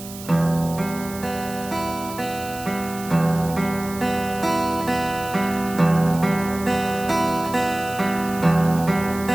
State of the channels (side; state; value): right; noise; hiss, 14 dB below the sound